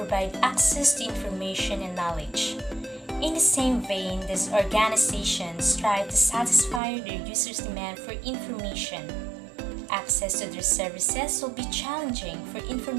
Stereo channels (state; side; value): drops out; left; at 6.8 s